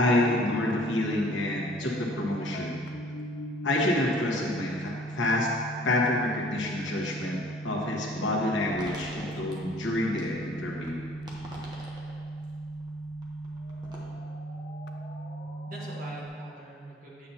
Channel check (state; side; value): normal; both; correlation 0.54